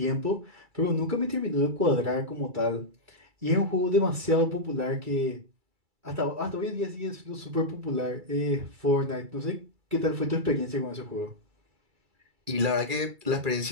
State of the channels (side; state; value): left; late; 2.3 ms